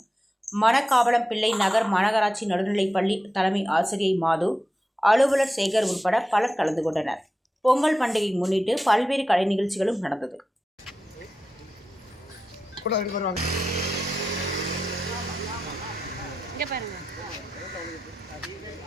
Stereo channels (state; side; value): normal; both; correlation 0.91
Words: மணக்காவளம் பிள்ளை நகர் மாநகராட்சி நடுநிலைப்பள்ளி தலைமை ஆசிரியை மாது, அலுவலர் சேகர் உட்பட பலர் கலந்து கொண்டனர். பொங்கல் பண்டிகை முன்னிட்டு பல்வேறு கலை நிகழ்ச்சிகளும் நடந்தது.